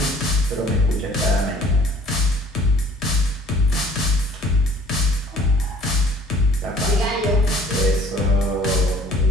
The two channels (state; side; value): normal; both; correlation 0.54